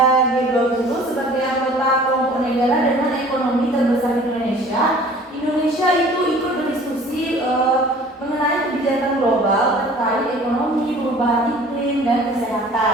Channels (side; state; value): both; normal; correlation 0.49